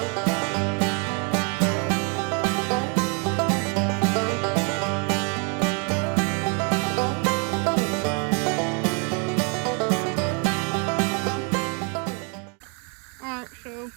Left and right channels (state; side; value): quieter; left; 35.3 dB